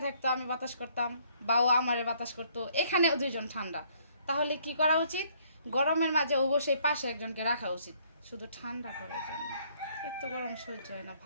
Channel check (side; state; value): both; inverted; correlation -0.65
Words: থাকতো, আমি বাতাস করতাম, বা ও আমারে বাতাস করতো, এখানেও দুইজন ঠান্ডা। তাহলে কি করা উচিত? গরমের মাঝে অবশ্যই পাশে একজনকে রাখা উচিত, শুধু ঠান্ডা করার জন্য। এত গরম সহ্য হয় না,